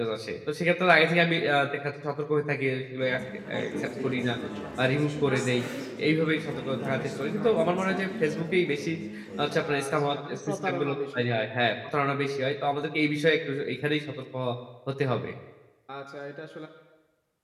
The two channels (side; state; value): both; identical; correlation 1.00